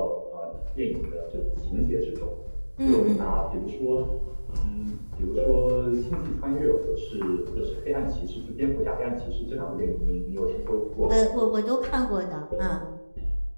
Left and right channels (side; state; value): both; inverted; correlation -1.00